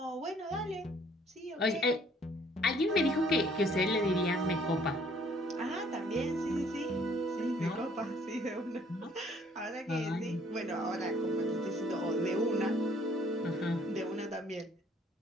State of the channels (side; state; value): both; normal; correlation 0.60